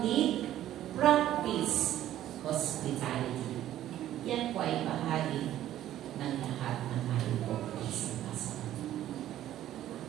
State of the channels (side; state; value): left; quieter; 12.7 dB